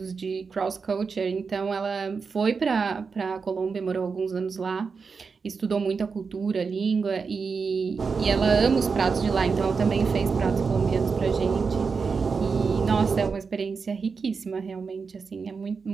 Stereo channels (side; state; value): left; quieter; 5.2 dB